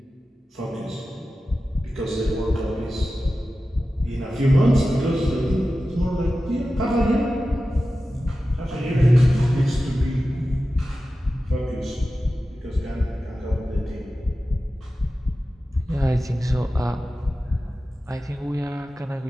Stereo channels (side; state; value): both; normal; correlation 0.94